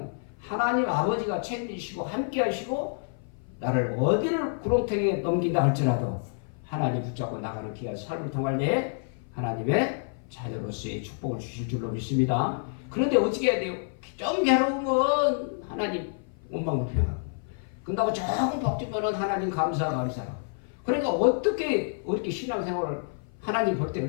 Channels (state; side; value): silent; right; 55 dB below the other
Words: 하나님 아버지가 책임지시고 함께 하시고 나를 어디를 구렁텅이에 넘긴다 할지라도 하나님 붙잡고 나가는 귀한 삶을 통할 때 하나님의 자녀로서의 축복을 주실 줄로 믿습니다. 그런데 어떻게 해야 돼요? 좀 괴로우면 하나님 원망불평하고 그런다고 조금 벅주면은 하나님 감사. 그러니까 어떻게 신앙생활을 하나님 볼 때